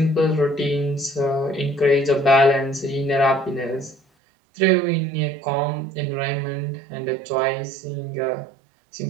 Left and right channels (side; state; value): left; drops out; at 4.0 s